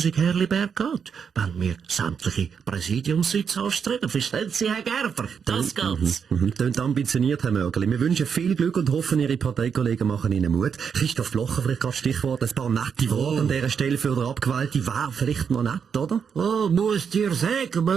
Herliberg geht, wenn wir sämtliche Präsidiumssitze anstreben, verstehen Sie, Herr Gerber? Das geht's. Tönt ambitioniert, Herr Mörgeli. Wir wünschen viel Glück und hoffen, Ihre Parteikollegen machen Ihnen Mut. Christoph Blocher, vielleicht gerade Stichwort, ein paar nette Worte an dieser Stelle für den Abgewählten. Wäre vielleicht noch nett, oder? Oh, muss dir sagen,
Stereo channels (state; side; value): quieter; left; 6.8 dB